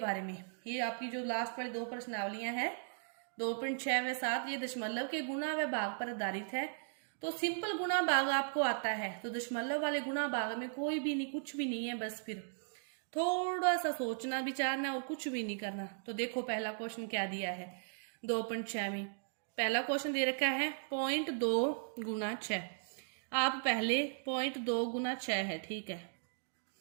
में। ये आपकी जो लास्ट वाली 2 प्रश्नावलियां हैं 2.6 व 7, ये दशमलव के गुणा व भाग पर आधारित है। तो सिंपल गुणा भाग आपको आता है, तो दशमलव वाले गुणा भाग में कोई भी नहीं, कुछ भी नहीं है, बस फिर थोड़ा सा सोचना विचारना और कुछ भी नहीं करना। तो देखो पहला क्वेश्चन क्या दिया है 2.6 में। पहला क्वेश्चन दे रखा है 0.2 गुना 6। आप पहले 0.2 गुना 6 है, ठीक है।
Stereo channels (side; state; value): left; silent; digital silence